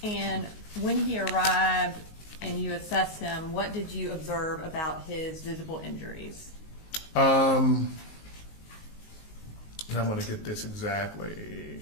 And when he arrived and you assessed him, what did you observe about his visible injuries? And I'm going to get this exactly.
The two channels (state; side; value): late; right; 19 ms